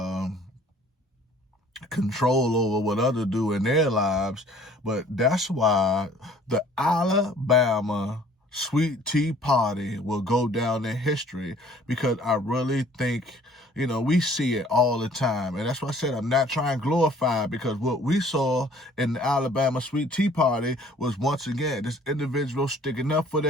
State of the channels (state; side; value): normal; both; correlation 0.54